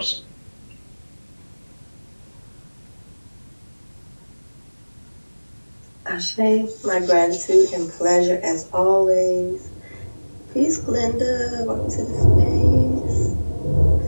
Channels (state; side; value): inverted; both; correlation -1.00